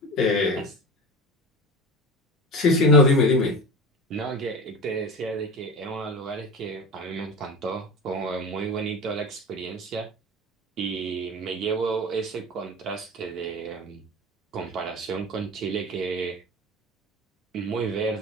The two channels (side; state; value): both; normal; correlation 0.31